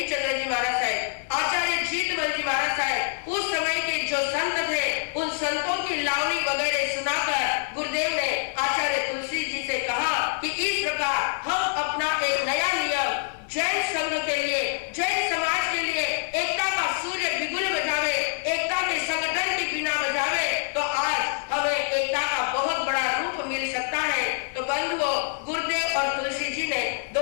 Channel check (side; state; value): right; silent; 61 dB below the other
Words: जी महाराज साहब, आचार्य जीतमल जी महाराज साहब, उस समय के जो संत थे, उन संतों की लावनी वगैरह सुनाकर गुरुदेव ने आचार्य तुलसी जी से कहा कि इस प्रकार हम अपना एक नया नियम जैन संघ के लिए, जैन समाज के लिए एकता का सूर्य बिगुल बजावे, एकता के संगठन की बिना बजावे, तो आज हमें एकता का बहुत बड़ा रूप मिल सकता है। तो बंधुओं, गुरुदेव और तुलसी जी ने